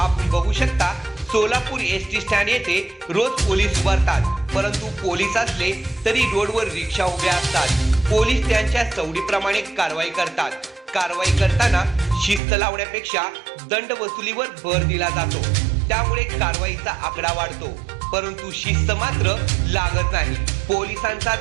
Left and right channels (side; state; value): left; drops out; at 12.4 s